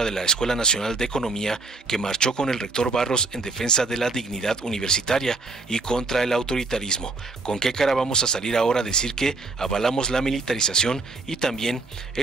de la Escuela Nacional de Economía, que marchó con el rector Barros en defensa de la dignidad universitaria y contra el autoritarismo? ¿Con qué cara vamos a salir ahora a decir que avalamos la militarización y también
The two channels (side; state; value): left; quieter; 3.6 dB